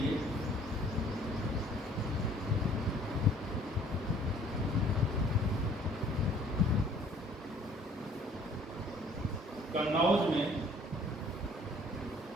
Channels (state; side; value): normal; both; correlation 0.56